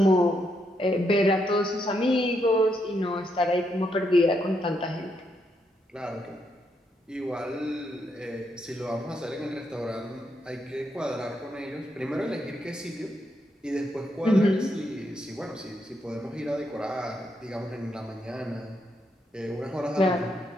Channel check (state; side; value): normal; both; correlation 0.79